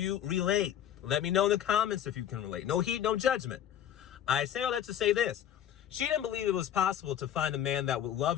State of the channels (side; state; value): right; quieter; 10.4 dB